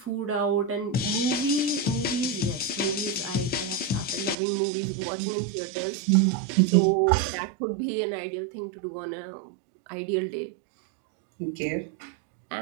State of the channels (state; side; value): drops out; left; at 4.4 s